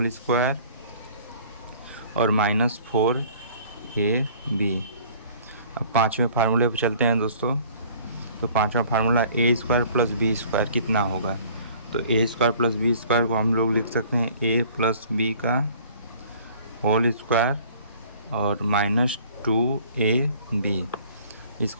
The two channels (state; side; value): inverted; both; correlation -0.52